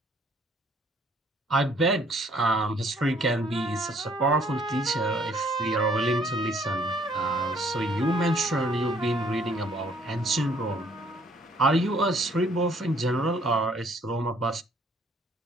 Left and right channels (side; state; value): both; normal; correlation 0.62